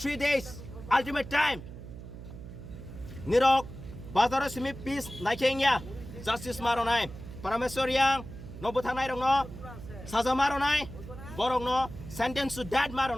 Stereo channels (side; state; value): right; noise; hum, 13 dB below the sound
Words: days ultimate time. Nirok bazar simi peace naikengya justice maronai parameswar yang no buthanai rong no saza maronai borong no sentence to death